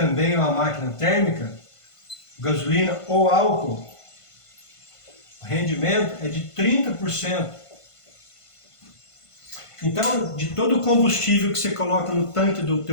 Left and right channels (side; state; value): right; late; 1.5 ms